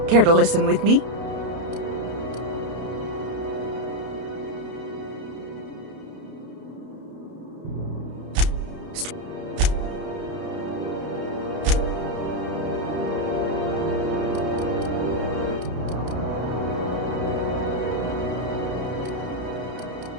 Care to listen with me?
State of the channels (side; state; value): left; late; 31 ms